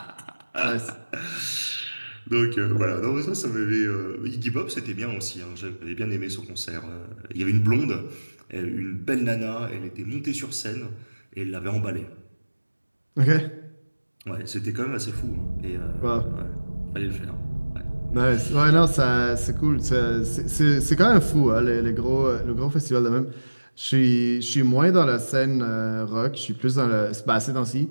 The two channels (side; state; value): both; inverted; correlation -1.00